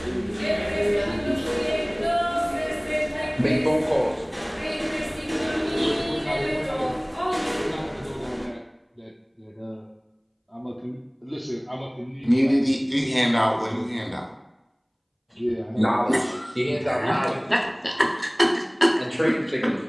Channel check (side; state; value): both; identical; correlation 1.00